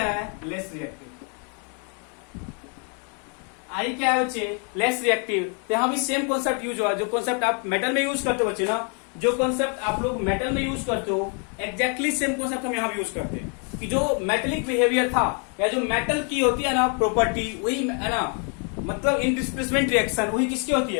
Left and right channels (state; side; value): quieter; right; 39.3 dB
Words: है, लेस रिएक्टिव, I क्या है बच्चे, लेस रिएक्टिव। तो यहां भी सेम कॉन्सेप्ट यूज हुआ, जो कॉन्सेप्ट आप मेटल में यूज करते हो बच्चे ना, जो कॉन्सेप्ट आप लोग मेटल में यूज करते हो, एग्जैक्टली सेम कॉन्सेप्ट हम यहां भी यूज करते हैं कि जो मेटेलिक बिहेवियर था या जो मेटल की होती है ना प्रॉपर्टी, वही है ना, मतलब इन डिस्प्लेसमेंट रिएक्शन वही किसकी होती